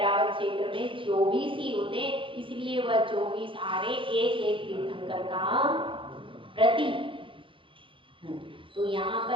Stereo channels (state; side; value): late; left; 0.25 ms